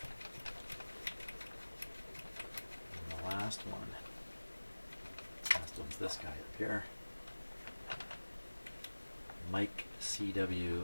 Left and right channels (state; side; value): inverted; both; correlation -1.00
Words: And the last one. Last one's this guy up here. Mic